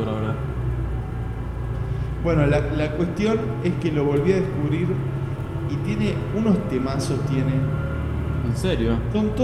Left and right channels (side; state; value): both; identical; correlation 1.00